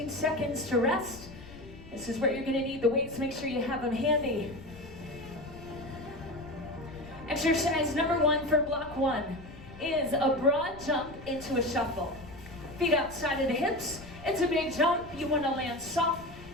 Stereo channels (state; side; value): noise; left; rumble, 17 dB below the sound